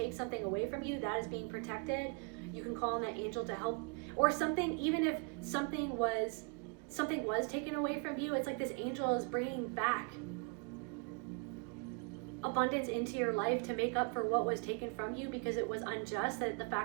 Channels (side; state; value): left; quieter; 34.0 dB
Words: something away from you, that is being protected. You can call on that angel to help. Or something, even if something was taken away from you, it's like this angel is bringing back abundance into your life to make up for what was taken from you, because it was unjust, that the